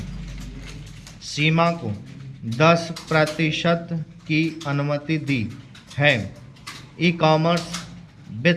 सीमा को 10% की अनुमति दी है। ई कॉमर्स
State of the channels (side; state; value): both; identical; correlation 1.00